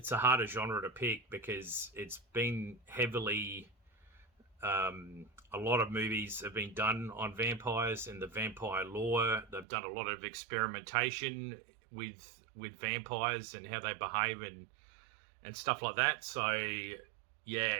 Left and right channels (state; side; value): drops out; left; at 9.7 s